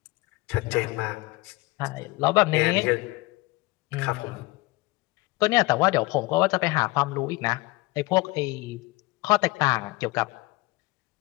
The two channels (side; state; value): right; quieter; 21.3 dB